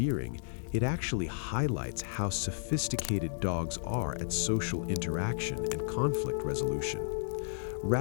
It actually highlights how sophisticated dogs are at social interaction and conflict resolution.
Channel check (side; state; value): right; silent; digital silence